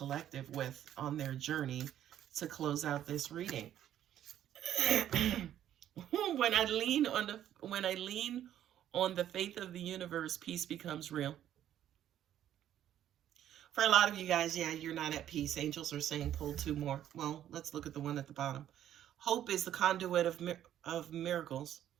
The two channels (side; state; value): left; quieter; 11.2 dB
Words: with on their journey to close out this reading? When I lean on the faith of the universe, peace becomes real. For a lot of you guys, yeah, you're not at peace. Angels are saying pull two more. Well, let's look at the one at the bottom. Hope is the conduit of miracles,